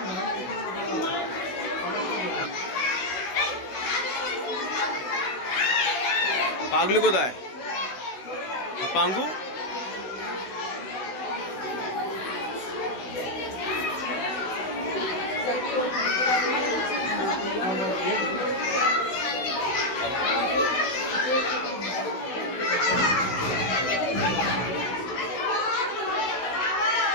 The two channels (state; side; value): late; right; 16 ms